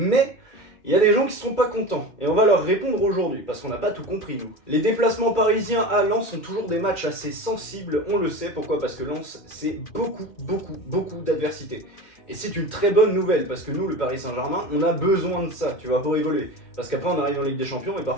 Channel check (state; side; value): late; right; 2.1 ms